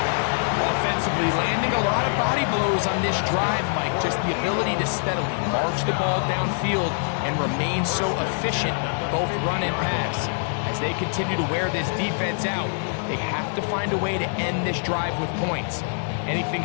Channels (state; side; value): silent; right; 62 dB below the other